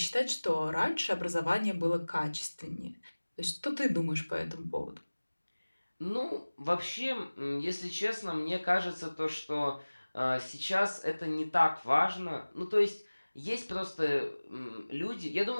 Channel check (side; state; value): both; inverted; correlation -1.00